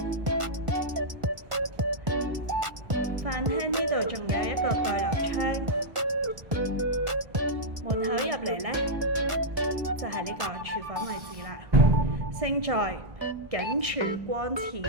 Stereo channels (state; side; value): late; left; 1.5 ms